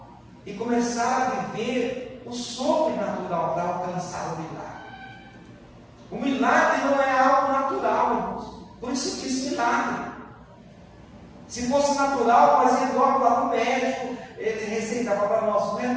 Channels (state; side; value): identical; both; correlation 1.00